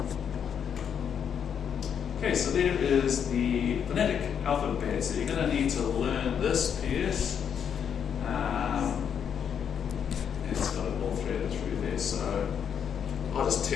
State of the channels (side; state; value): right; quieter; 7.9 dB